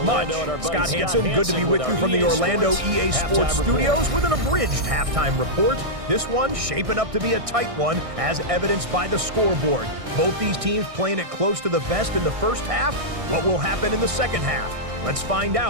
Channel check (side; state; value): left; late; 1.6 ms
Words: Scott Hansen, good to be with you from the Orlando EA Sports Studios with an abridged halftime report. This one shaping up to be a tight one, as evidenced by the scoreboard. Both these teams playing it close to the vest in the first half. What will happen in the second half? Let's find